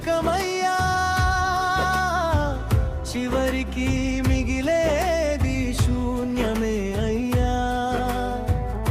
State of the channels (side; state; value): both; identical; correlation 1.00